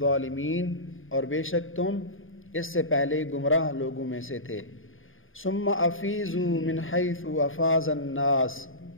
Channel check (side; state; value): right; late; 0.59 ms